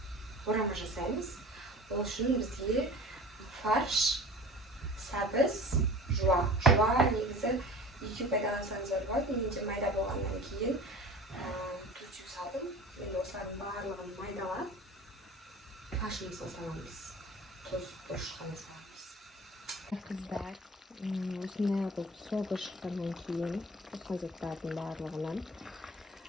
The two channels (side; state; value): both; normal; correlation 0.40